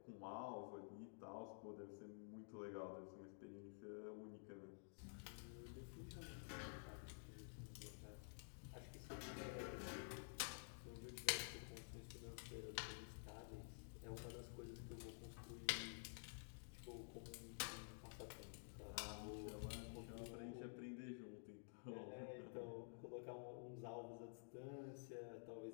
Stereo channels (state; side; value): silent; right; digital silence